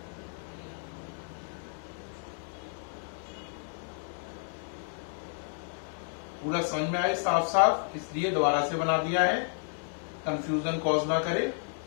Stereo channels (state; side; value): silent; right; 57 dB below the other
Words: पूरा समझ में आए साफ साफ, इसलिए दोबारा से बना दिया है, कंफ्यूजन कॉज ना करे।